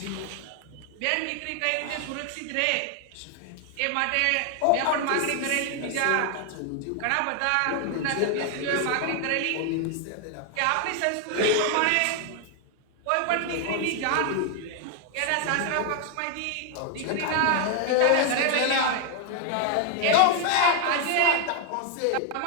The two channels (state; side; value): different; both; correlation 0.00